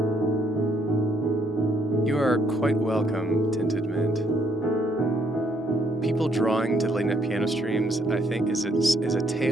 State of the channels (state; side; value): normal; both; correlation 0.70